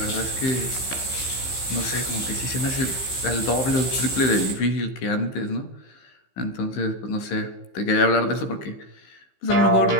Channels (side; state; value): right; late; 15 ms